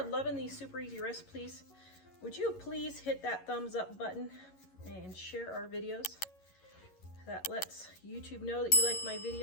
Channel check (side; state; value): right; late; 11 ms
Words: loving these super easy recipes, would you please hit that thumbs up button and share our videos? That lets YouTube know that you like my